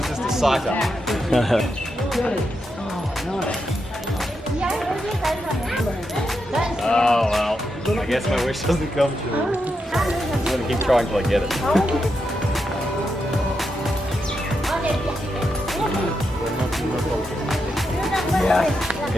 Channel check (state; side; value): normal; both; correlation 0.84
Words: just a sight up. Oh well, I guess my wish doesn't come true. I'm gonna keep trying till I get it.